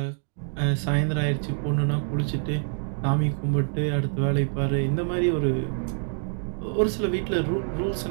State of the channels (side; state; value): left; silent; digital silence